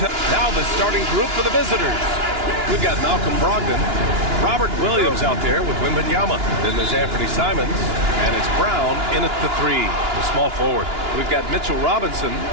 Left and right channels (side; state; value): left; late; 2.9 ms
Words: now the starting group for the visitors. We've got Malcolm Brogdon, Robert Williams out there with Wembanyama. Then there's Anthony Simons, and it's Brown in at the 3, the small forward. We've got Mitchell Robinson,